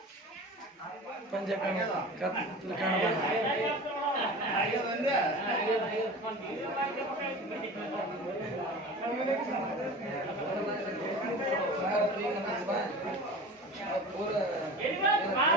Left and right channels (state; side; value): normal; both; correlation 0.35